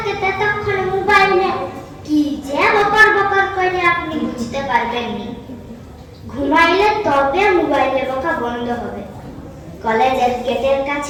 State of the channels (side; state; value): both; identical; correlation 1.00